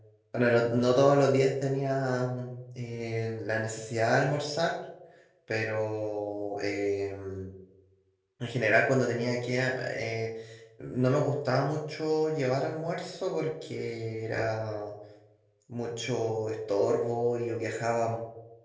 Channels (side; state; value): both; identical; correlation 1.00